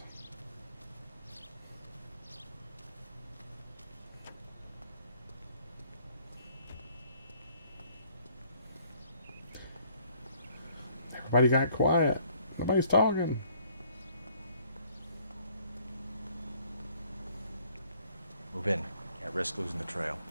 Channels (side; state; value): both; inverted; correlation -0.61